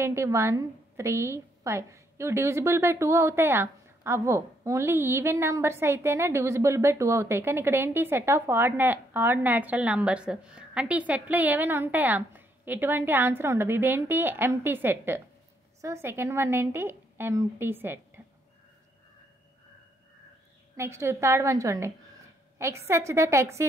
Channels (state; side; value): normal; both; correlation 0.72